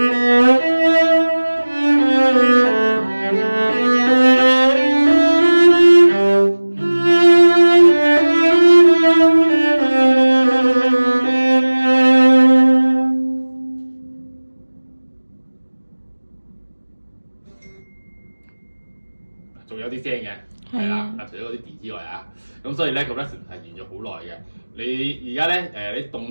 有啲聲嘅，係啦，除咗嗰啲 D 之外啊，咁所以咧個 resonance 係沿咗好耐嘅。你而家咧你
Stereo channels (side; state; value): both; inverted; correlation -1.00